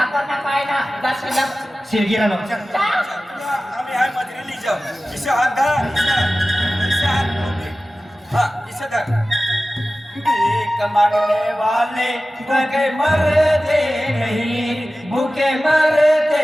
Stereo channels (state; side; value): normal; both; correlation 0.96